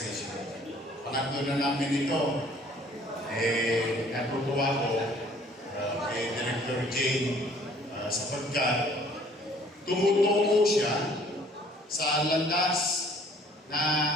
Pangatlo na namin ito. Natutuwa ko kay Director Jane sapagkat tumutungo siya sa landas na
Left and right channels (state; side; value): normal; both; correlation 0.57